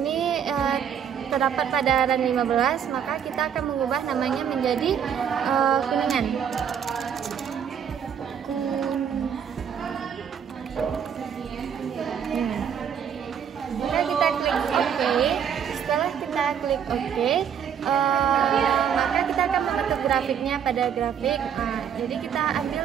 terdapat pada RAN 15, maka kita akan mengubah namanya menjadi Kuningan. Maka kita klik OK. Setelah kita klik OK, maka kita akan membentuk grafiknya pada grafik. Jadi kita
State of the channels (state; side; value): quieter; left; 8.0 dB